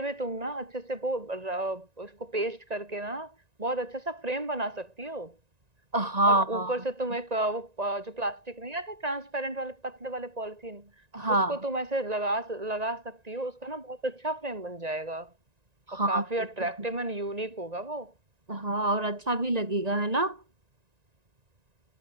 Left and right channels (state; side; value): late; left; 1.9 ms